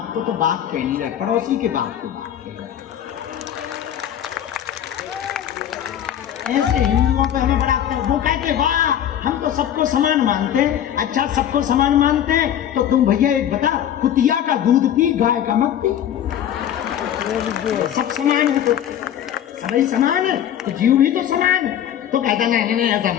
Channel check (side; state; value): right; quieter; 10.3 dB